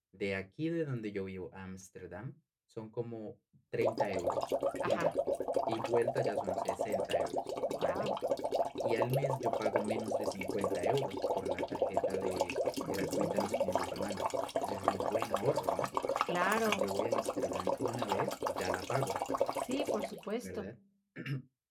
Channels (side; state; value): both; identical; correlation 1.00